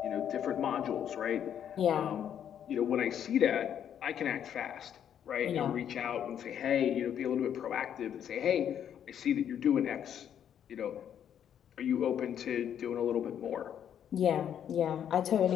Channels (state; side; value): quieter; right; 9.3 dB